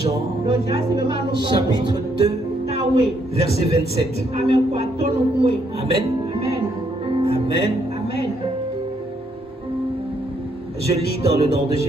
chapitre 2, verset 27. Amen. Amen. Amen. Je lis dans le nom de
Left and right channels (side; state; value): both; normal; correlation 0.72